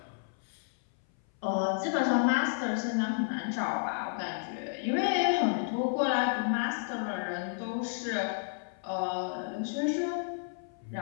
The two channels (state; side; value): silent; right; 57 dB below the other